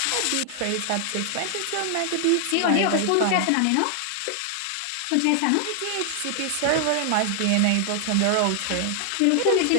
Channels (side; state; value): both; different; correlation 0.00